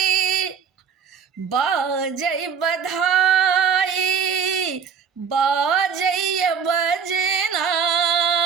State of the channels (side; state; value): left; quieter; 6.7 dB